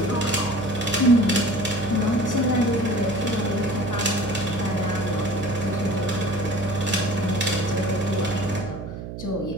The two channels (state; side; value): noise; right; hum, 9 dB below the sound